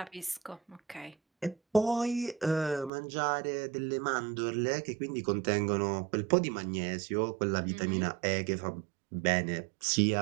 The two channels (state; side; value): drops out; left; at 2.9 s